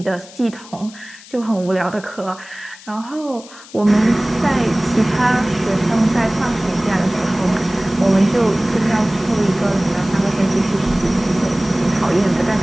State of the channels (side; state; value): left; noise; hiss, 20 dB below the sound